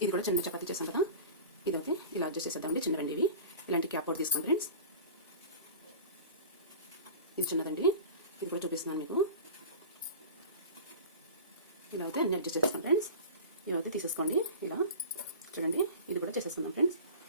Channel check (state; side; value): inverted; both; correlation -0.35